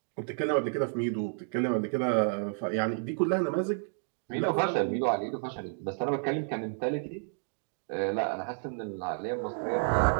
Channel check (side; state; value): left; silent; digital silence